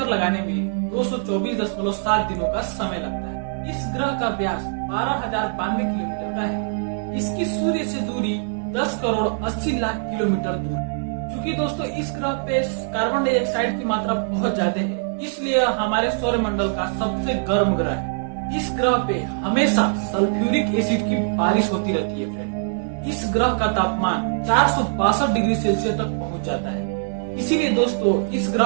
लगाने में 224.7 दिनों का समय लगता है। इस ग्रह का व्यास 12,092 किलोमीटर का है। इसकी सूर्य से दूरी 10 करोड़ 80 लाख किलोमीटर दूर है। क्योंकि दोस्तों, इस ग्रह पे कार्बन डाइऑक्साइड की मात्रा बहुत ज्यादा है, इसलिए हमारे सौर मंडल का सबसे गर्म ग्रह है। इस ग्रह पे हमेशा सल्फ्यूरिक एसिड की बारिश होती रहती है फ्रेंड। इस ग्रह का तापमान 462 डिग्री सेल्सियस तक पहुंच जाता है। इसीलिए दोस्तों, इस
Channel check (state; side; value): silent; left; 57 dB below the other